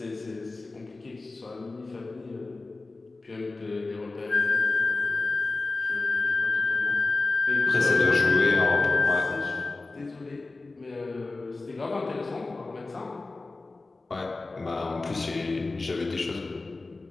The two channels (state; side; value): quieter; right; 3.4 dB